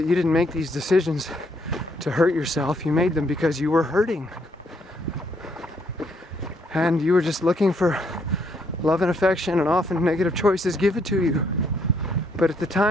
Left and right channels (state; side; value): normal; both; correlation 0.71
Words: you didn't make these decisions to hurt yourself. You made them because you were hurting, and you were just looking for love and affection, and often negative choices give it to you. But at the